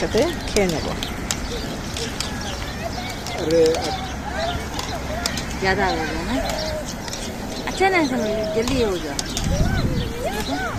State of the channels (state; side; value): identical; both; correlation 1.00